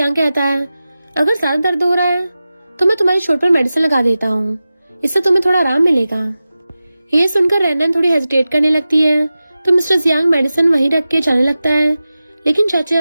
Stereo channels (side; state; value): both; inverted; correlation -0.95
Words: कहता है अगर ज्यादा दर्द हो रहा है तो मैं तुम्हारी चोट पर मेडिसिन लगा देता हूँ, इससे तुम्हें थोड़ा आराम मिलेगा। ये सुनकर रैनन थोड़ी हेजिटेट करने लगती है तो मिस्टर जियांग मेडिसिन वहीं रख के जाने लगता है, लेकिन जाते